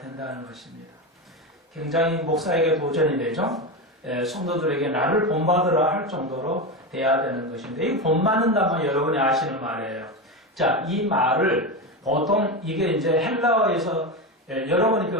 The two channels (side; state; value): both; normal; correlation 0.17